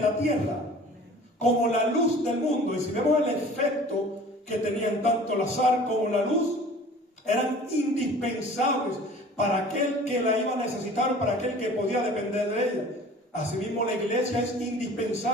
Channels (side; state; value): both; normal; correlation 0.45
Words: tierra, como la luz del mundo. Y si vemos el efecto que tenían tanto la sal como la luz, eran indispensables para aquel que la iba a necesitar, para aquel que podía depender de ella. Asimismo, la iglesia es